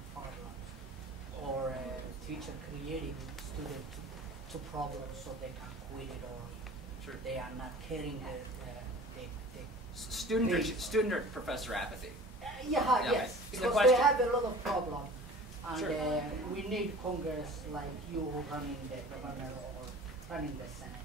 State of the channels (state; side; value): normal; both; correlation 0.42